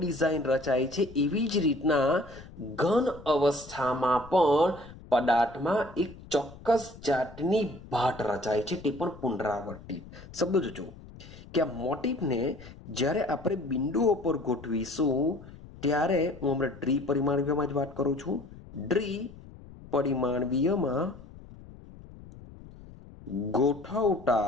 રચાય છે એવી જ રીતના ઘન અવસ્થામાં પણ પદાર્થમાં એક ચોક્કસ જાતની ભાટ રચાય છે, તે પણ પુનરાવર્તિત. શબ્દો જોજો કે આ મોટીફને જ્યારે આપણે બિંદુઓ પર ગોઠવીશું ત્યારે હું હમણાં દ્વિપરિમાણીયમાં જ વાત કરું છું. દ્વિપરિમાણીયમાં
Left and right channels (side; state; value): left; noise; rumble, 18 dB below the sound